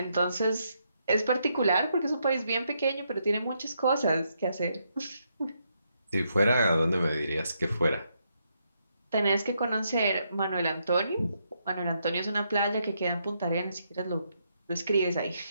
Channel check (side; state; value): both; inverted; correlation -0.78